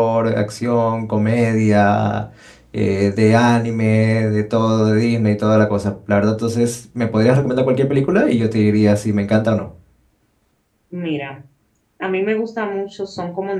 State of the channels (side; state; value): both; identical; correlation 1.00